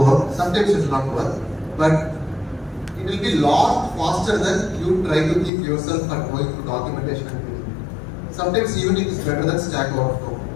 work. Sometimes it will not work, but it will be lot faster than you try to think yourself and going through documentation and everything. Sometimes even it is better than Stack Overflow.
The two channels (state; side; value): drops out; right; at 5.5 s